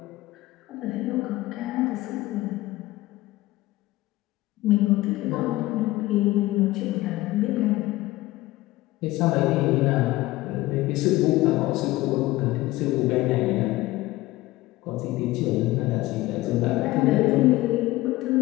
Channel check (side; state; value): right; quieter; 18.2 dB